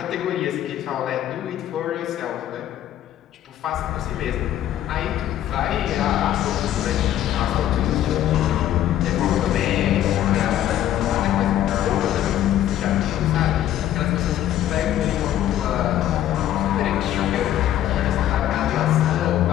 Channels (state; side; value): quieter; right; 12.0 dB